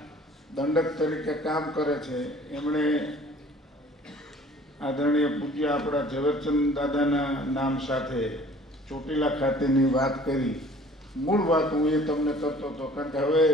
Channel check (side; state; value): both; normal; correlation 0.51